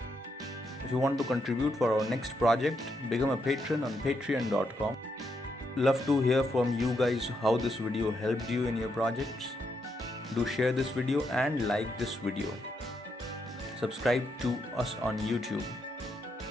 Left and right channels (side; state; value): both; normal; correlation 0.80